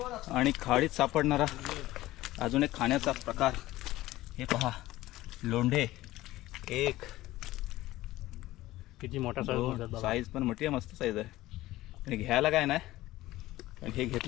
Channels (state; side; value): quieter; right; 16.7 dB